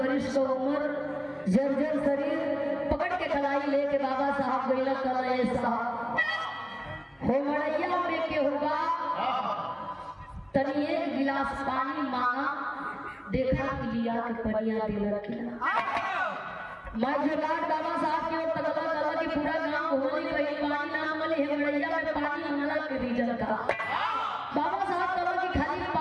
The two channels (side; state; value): both; identical; correlation 1.00